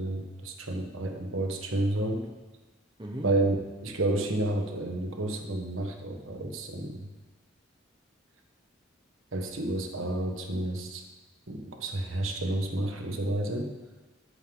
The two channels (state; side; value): normal; both; correlation 0.50